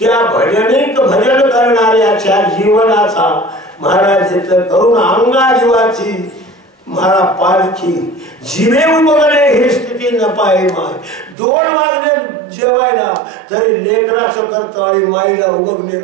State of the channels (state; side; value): drops out; left; at 11.4 s